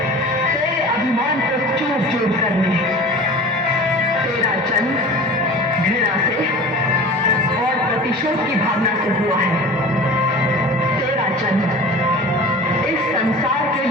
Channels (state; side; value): normal; both; correlation 0.38